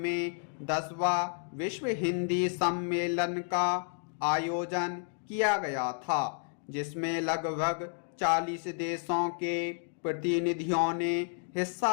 10वां विश्व हिंदी सम्मेलन का आयोजन किया गया था, जिसमें लगभग 40 देशों के प्रतिनिधियों ने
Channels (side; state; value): right; silent; 57 dB below the other